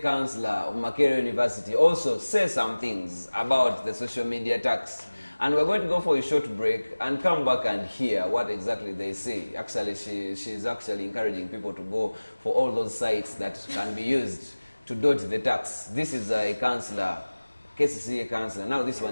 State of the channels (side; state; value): both; inverted; correlation -1.00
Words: councillor of Makerere University also say some things about the social media tax. And we're going to go for a short break and come back and hear what exactly they say. Actually, she's actually encouraging people to go for all those sites that can be used to dodge the tax. This is a councillor, KCCA councillor. Now this